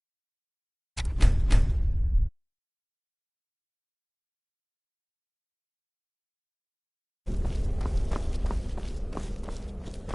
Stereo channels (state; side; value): identical; both; correlation 1.00